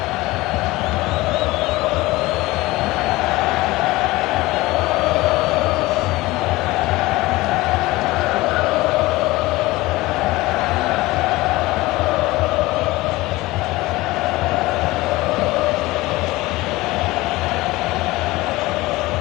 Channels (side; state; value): right; quieter; 19.8 dB